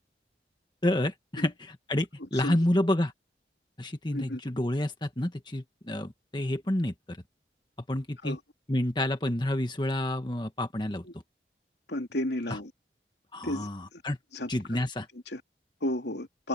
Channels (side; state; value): both; normal; correlation 0.77